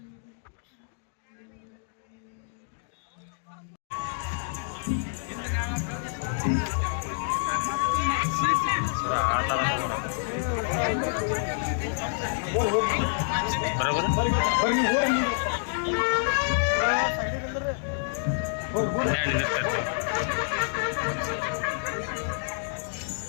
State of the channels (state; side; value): silent; right; digital silence